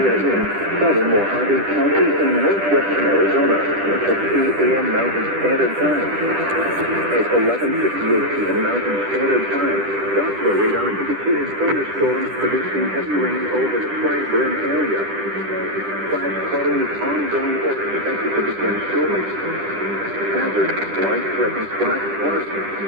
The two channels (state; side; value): late; left; 10 ms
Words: in southern Mojave County in northwestern Arizona at 2 a.m. Mountain Standard Time. At 11:58 p.m. Mountain Standard Time, Doppler radar indicated thunderstorms producing heavy rain over the flag burn area. Flash flooding is ongoing or expected to begin shortly. Hazard, life-threatening flash flood.